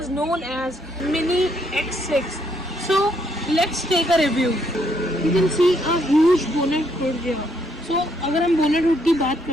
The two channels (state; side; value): normal; both; correlation 0.72